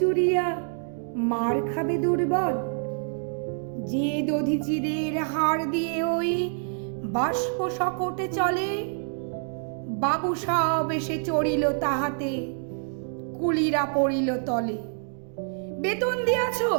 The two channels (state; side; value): silent; left; 60 dB below the other